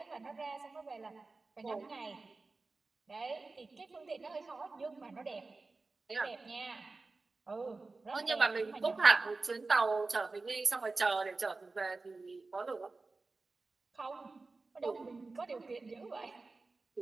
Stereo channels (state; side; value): quieter; left; 3.7 dB